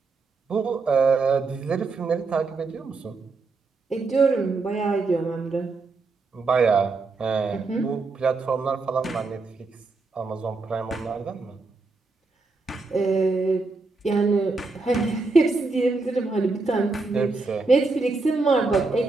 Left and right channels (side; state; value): left; quieter; 3.9 dB